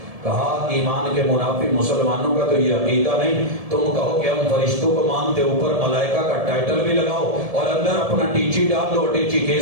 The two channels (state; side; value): late; left; 1.7 ms